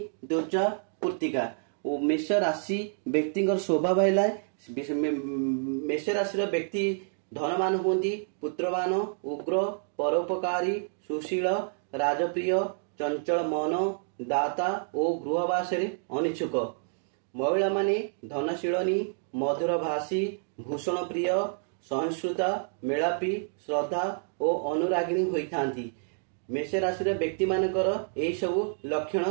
द्विजा कृत्तिका और मेष राशि व्यक्ति स्वभाव है मेष राशि व्यक्ति धनवान होती पुत्रवान उग्र परोपकारी सुशील राजप्रिय चंचल मन दाता और गृहवास अनिच्छुक महिला माने धनशीलनी मधुर भाषी भूषण प्रिय सहिष्णुता मेलापी श्रद्धा और अनुरागिणी होइथांती। मेष राशि व्यक्ति मानकर यही सबु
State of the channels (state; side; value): silent; left; digital silence